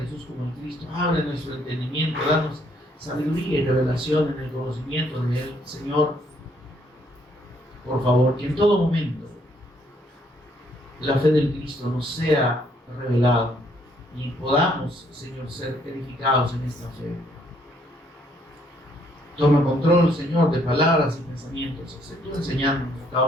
como el Cristo, abre nuestro entendimiento, danos sabiduría y revelación en el conocimiento de Él, Señor. Por favor, que en todo momento la fe del Cristo nos sea revelada y podamos, Señor, ser edificados en esta fe. Toma control, Señor, de palabras y pensamientos, tú enseñándonos a cada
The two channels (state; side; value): normal; both; correlation 0.68